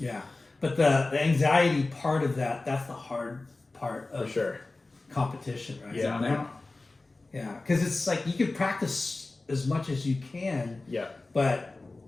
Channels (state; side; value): quieter; right; 3.2 dB